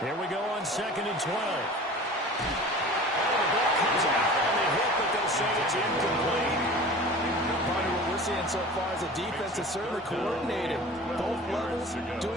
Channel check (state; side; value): normal; both; correlation 0.40